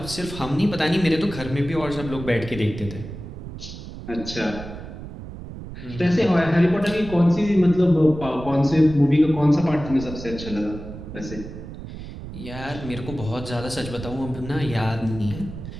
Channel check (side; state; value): right; noise; rumble, 11 dB below the sound